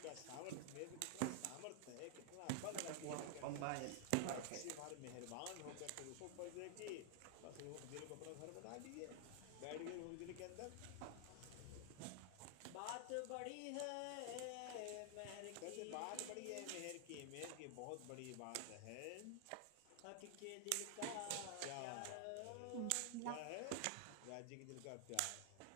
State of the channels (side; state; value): both; different; correlation 0.00